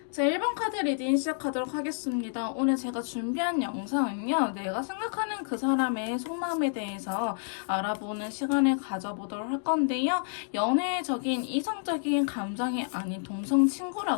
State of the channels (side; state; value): right; silent; digital silence